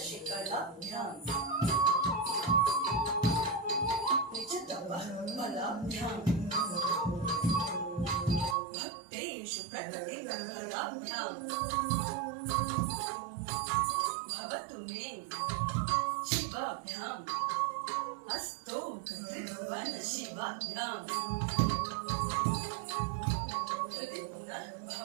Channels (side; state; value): left; drops out; at 8.6 s